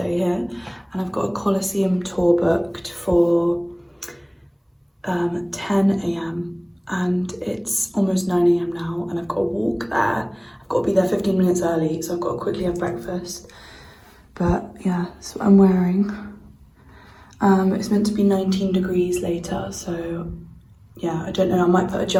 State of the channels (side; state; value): both; identical; correlation 1.00